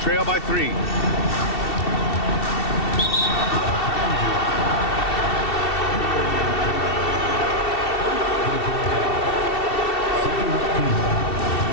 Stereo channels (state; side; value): late; right; 2.7 ms